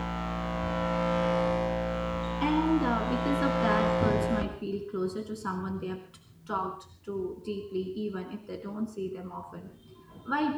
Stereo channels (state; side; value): identical; both; correlation 1.00